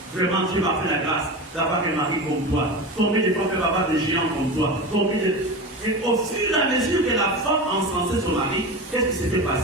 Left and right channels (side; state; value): both; normal; correlation 0.26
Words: Vraiment, Dieu m'a fait la grâce d'avoir un mari comme toi. Combien de fois peut avoir des géants comme toi? Et au fur et à mesure que la femme encensait son mari, qu'est-ce qui s'était